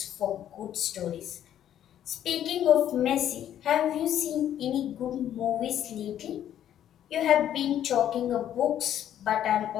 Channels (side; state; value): right; quieter; 10.8 dB